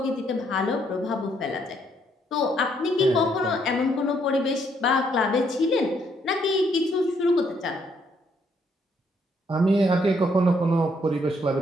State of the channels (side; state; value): both; normal; correlation 0.71